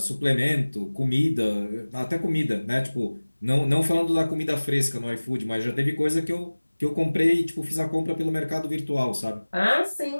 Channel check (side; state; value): both; inverted; correlation -1.00